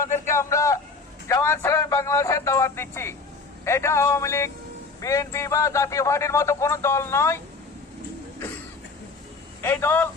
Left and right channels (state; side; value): quieter; right; 4.2 dB